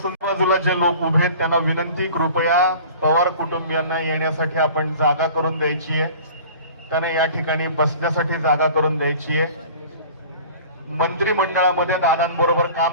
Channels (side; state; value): both; inverted; correlation -0.43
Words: बाजूला जे लोक उभे आहेत त्यांना विनंती, कृपया पवार कुटुंबियांना येण्यासाठी आपण जागा करून द्यायची आहे. त्यांना या ठिकाणी बसण्यासाठी जागा करून द्यायची आहे. मंत्रिमंडळामध्ये दादांबरोबर